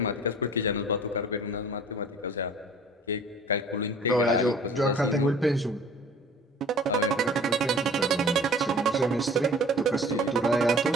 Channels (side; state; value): both; normal; correlation 0.47